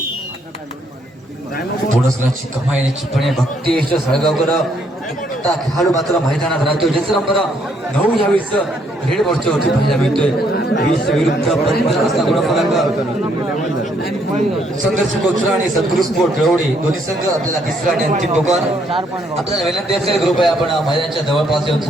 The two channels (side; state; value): both; normal; correlation 0.70